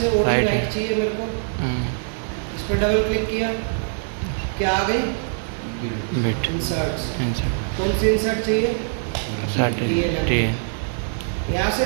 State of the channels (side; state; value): left; silent; digital silence